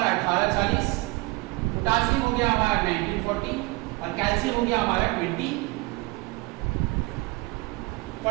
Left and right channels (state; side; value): quieter; left; 23.8 dB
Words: 1840, पोटासियम हो गया हमारा 1940, और कैल्शियम हो गया हमारा 2040।